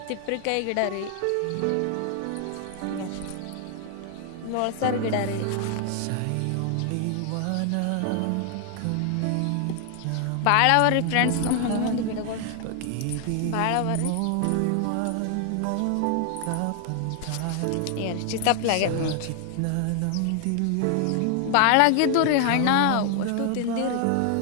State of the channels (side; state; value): both; different; correlation 0.00